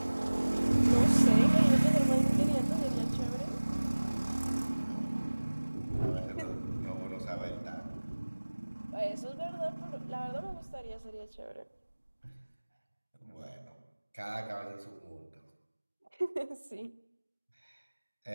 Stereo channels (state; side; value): inverted; both; correlation -1.00